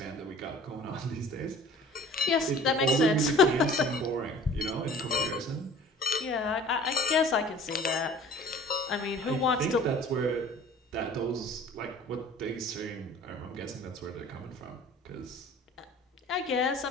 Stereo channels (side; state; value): both; normal; correlation 0.46